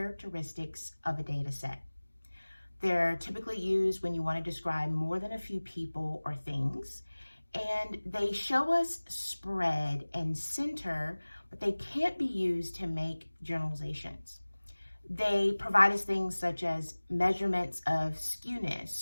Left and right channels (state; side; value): inverted; both; correlation -1.00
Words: of a data set. They're typically used when you want to describe more than a few people or things, and they show us spread and center, but they can't be used to make generalizations. They provide us things such as measurements of